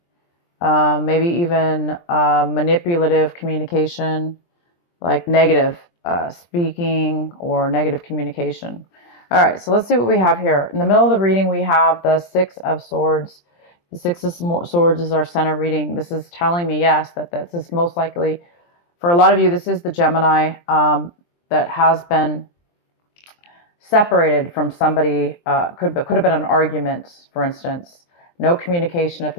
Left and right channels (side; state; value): right; late; 23 ms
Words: maybe even manipulative communication, like negative speaking or negative communication. All right, so let's see what we have here. In the middle of the reading, we have the Six of Swords. The Six of Swords is our center reading. This is telling me, yes, that this is most likely, for a lot of you, this is the Gemini that has been separated from somebody. Could have been an argument, for instance. No communication at